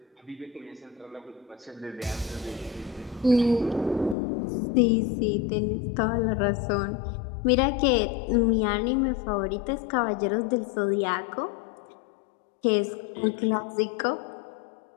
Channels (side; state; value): right; drops out; at 4.2 s